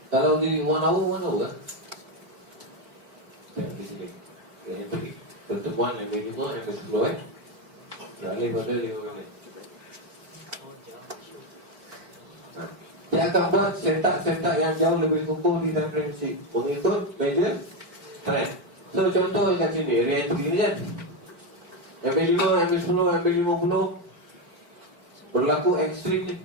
Kalau di 1 hour kan? Tengok di sini. Pertemuan MA5, MA10 beralih pada 5 minit. Dia akan buat setup yang jauh lebih kukuh di time frame kecil mengikut major trend. So contoh kat sini, re-entry ni kan MA5, MA10, MA50 berlaku ekstrim ni.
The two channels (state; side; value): late; left; 4.5 ms